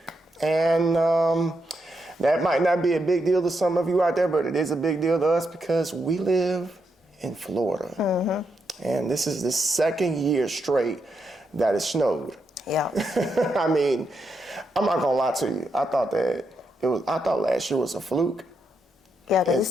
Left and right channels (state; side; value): normal; both; correlation 0.82